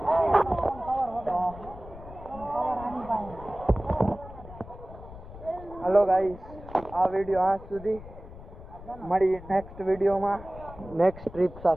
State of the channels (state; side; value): noise; left; rumble, 16 dB below the sound